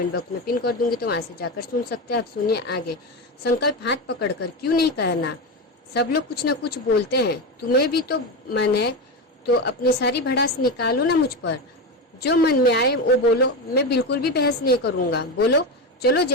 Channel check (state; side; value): normal; both; correlation 0.16